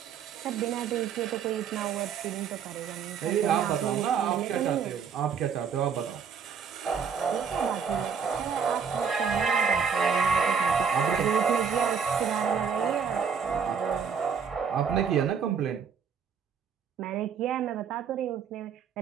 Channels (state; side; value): quieter; left; 6.6 dB